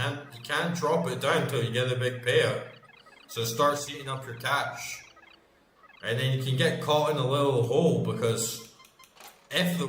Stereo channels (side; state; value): both; identical; correlation 1.00